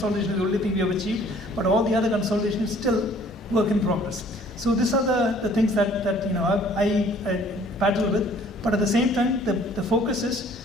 is the only thing we have achieved, but all the other consolidation is still work in progress. So these are the things that I battle with. But at the same time, the focus is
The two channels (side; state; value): both; normal; correlation 0.56